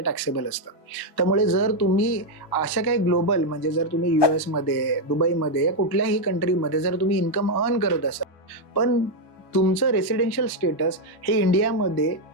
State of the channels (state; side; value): late; right; 1.1 ms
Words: टॅक्सेबल असतं. त्यामुळे जर तुम्ही अशा काही ग्लोबल म्हणजे जर तुम्ही US मध्ये, दुबईमध्ये या कुठल्याही कंट्रीमध्ये जर तुम्ही इन्कम अर्न करत असाल, पण तुमचं रेसिडेन्शियल स्टेटस हे इंडियामध्ये